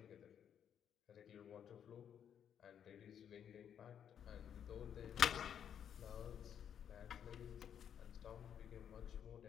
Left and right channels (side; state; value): right; quieter; 8.8 dB